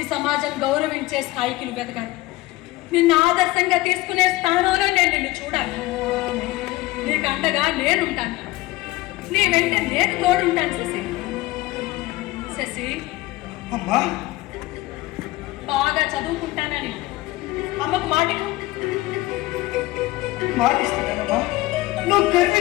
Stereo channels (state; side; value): quieter; right; 18.9 dB